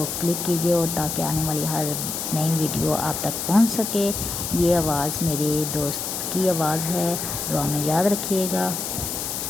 کلک کیجئے اور تاکہ آنے والی ہر نئی ویڈیو آپ تک پہنچ سکے۔ یہ آواز میرے دوست کی آواز ہے، دعا میں یاد رکھیے گا۔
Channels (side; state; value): left; noise; hiss, 4 dB below the sound